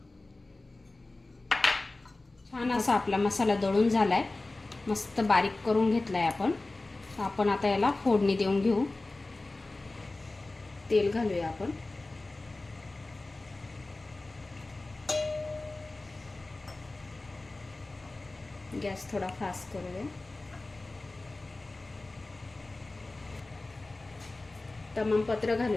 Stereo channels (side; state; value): right; quieter; 3.1 dB